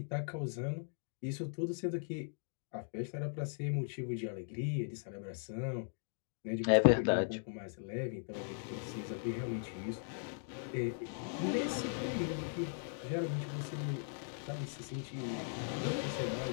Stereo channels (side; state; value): right; silent; digital silence